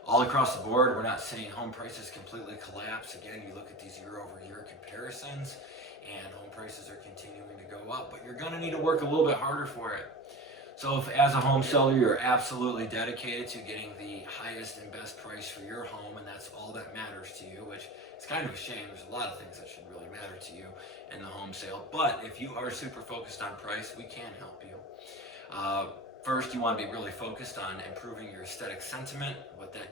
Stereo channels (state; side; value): normal; both; correlation 0.31